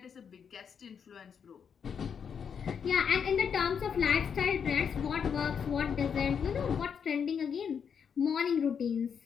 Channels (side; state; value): right; quieter; 7.1 dB